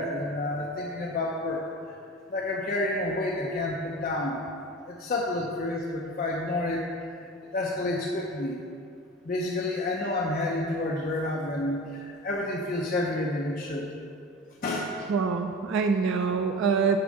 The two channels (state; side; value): normal; both; correlation 0.33